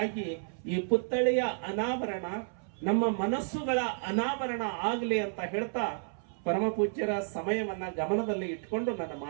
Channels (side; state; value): left; silent; 57 dB below the other